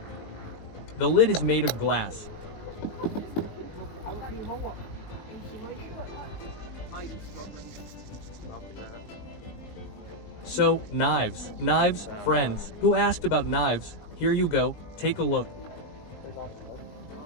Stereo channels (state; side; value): late; right; 19 ms